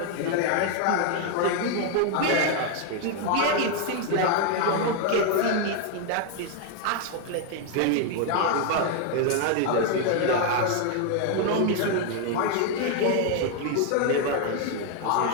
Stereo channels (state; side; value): different; both; correlation 0.00